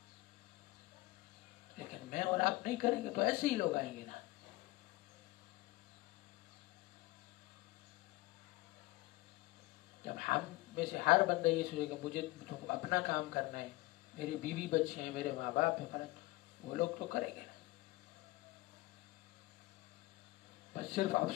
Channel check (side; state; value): right; quieter; 20.4 dB